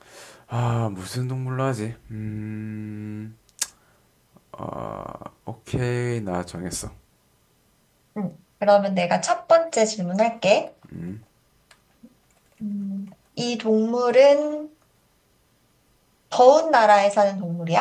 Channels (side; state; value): both; identical; correlation 1.00